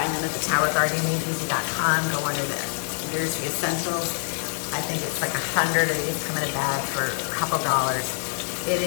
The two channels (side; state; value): right; silent; digital silence